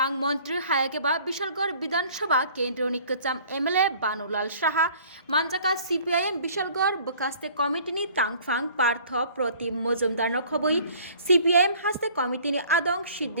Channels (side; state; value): both; inverted; correlation -0.52